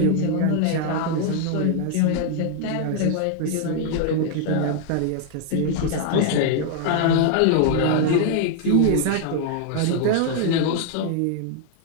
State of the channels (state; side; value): different; both; correlation 0.00